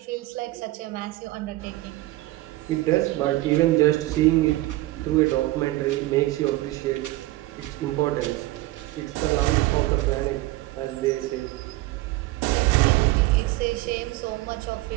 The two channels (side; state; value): left; quieter; 18.6 dB